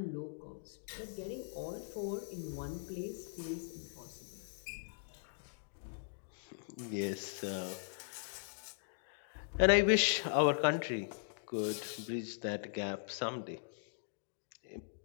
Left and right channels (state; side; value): silent; right; digital silence